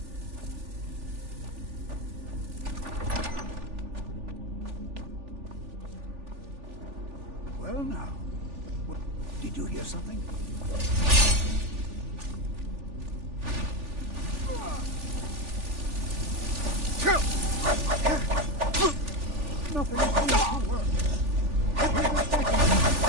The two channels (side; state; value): left; late; 3.4 ms